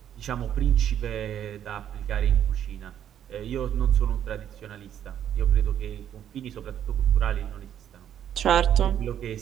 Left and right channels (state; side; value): quieter; left; 10.0 dB